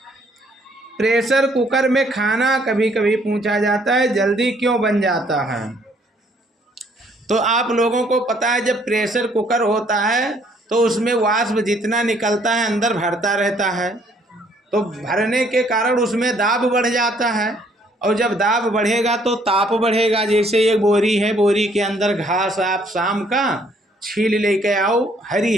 प्रेशर कुकर में खाना कभी कभी पूछा जाता है जल्दी क्यों बन जाता है? तो आप लोगों को पता है जब प्रेशर कुकर होता है तो उसमें वाष्प जितना निकलता है अंदर भरता रहता है, तो भरने के कारण उसमें दाब बढ़ जाता है। और जब दाब बढ़ेगा तो ताप बढ़ेगा। जैसे एक बोरी है, बोरी के अंदर घास आप शाम का छील लेके आओ, हरी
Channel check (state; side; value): normal; both; correlation 0.64